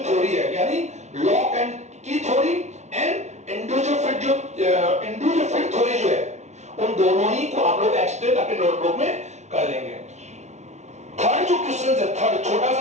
थ्योरी है यानी लॉग एंड की theory and individual fit theory जो है उन दोनों ही को आप लोग एक्सप्लेन अपने नोटबुक में कर लेंगे। थर्ड जो क्वेश्चन है, थर्ड छोटा सा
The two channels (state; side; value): late; left; 0.33 ms